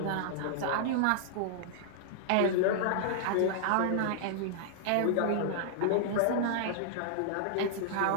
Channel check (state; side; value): different; both; correlation -0.01